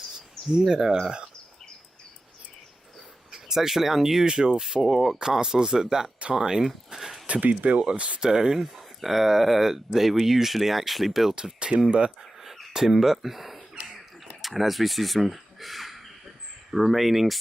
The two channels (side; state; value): both; normal; correlation 0.94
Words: Yeah. It's actually unusual for castles at that time to be built of stone. They were usually actually built of timber. And as we see some remaining